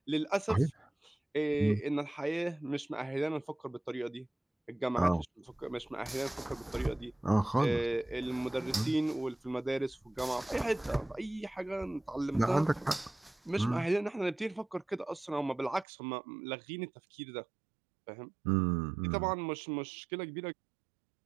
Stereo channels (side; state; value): left; drops out; at 15.9 s